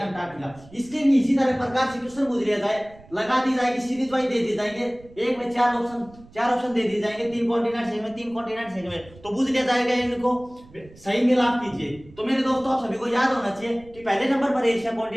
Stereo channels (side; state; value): right; noise; rumble, 23 dB below the sound